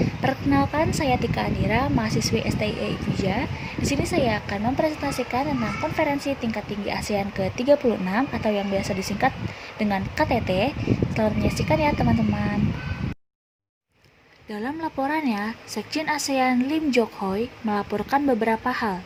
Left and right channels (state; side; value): identical; both; correlation 1.00